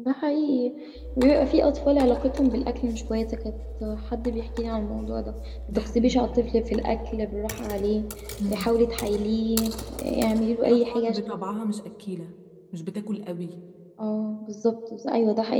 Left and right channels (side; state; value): both; identical; correlation 1.00